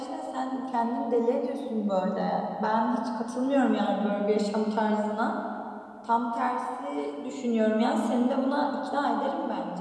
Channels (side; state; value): both; identical; correlation 1.00